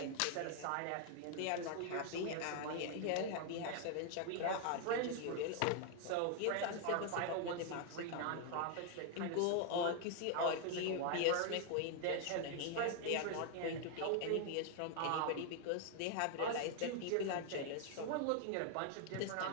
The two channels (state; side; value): different; both; correlation 0.00